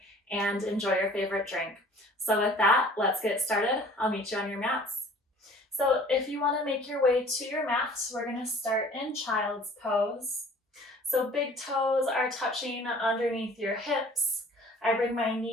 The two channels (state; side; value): normal; both; correlation 0.50